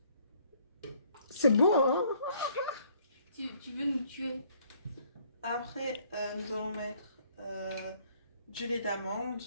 C'est bon, hein? Tu veux nous tuer? Après, nous allons mettre du lait d'amande.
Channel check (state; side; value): inverted; both; correlation -0.63